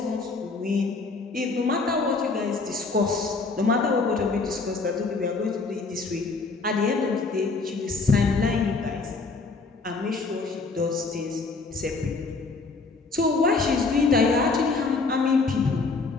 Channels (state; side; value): quieter; right; 4.0 dB